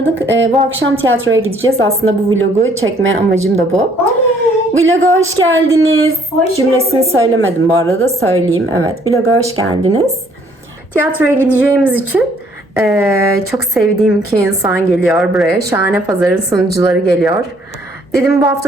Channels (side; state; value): both; normal; correlation 0.63